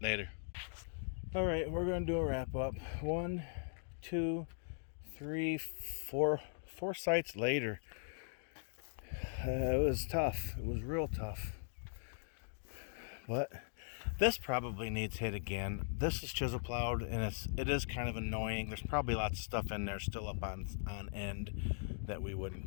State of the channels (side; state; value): right; silent; digital silence